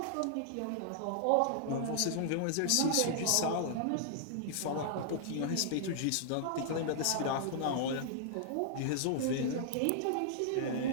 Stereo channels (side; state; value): both; different; correlation -0.01